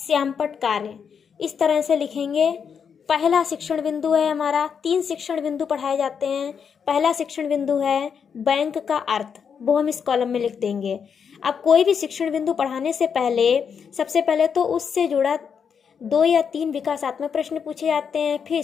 कार्य। इस तरह से लिखेंगे। पहला शिक्षण बिंदु है हमारा, 3 शिक्षण बिंदु पढ़ाए जाते हैं। पहला शिक्षण बिंदु है बैंक का अर्थ, वो हम इस कॉलम में लिख देंगे। अब कोई भी शिक्षण बिंदु पढ़ाने से पहले सबसे पहले तो उससे जुड़ा 2 या 3 विकासात्मक प्रश्न पूछे जाते हैं, फिर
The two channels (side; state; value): right; quieter; 6.8 dB